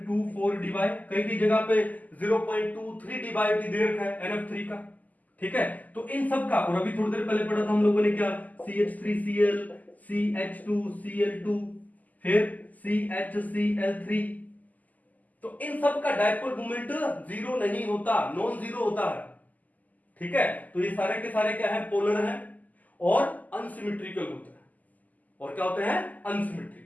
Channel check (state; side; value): late; right; 0.079 ms